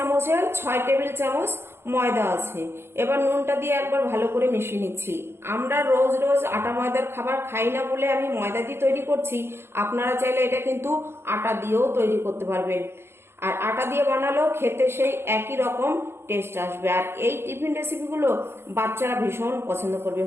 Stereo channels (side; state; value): left; late; 0.12 ms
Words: 6 টেবিল চামচ ময়দা আছে। এবার নুনটা দিয়ে একবার ভালো করে মিশিয়ে নিচ্ছি। আমরা রোজ রোজ আটা ময়দার খাবার খাই না বলে আমি ময়দা দিয়ে তৈরি করছি। আপনারা চাইলে এটা কিন্তু আটা দিয়েও তৈরি করতে পারবেন, আর আটা দিয়ে বানালেও খেতে সেই একই রকম টেস্ট আসবে। আর এই টিফিন রেসিপিগুলো বাচ্চারা ভীষণ পছন্দ করবে।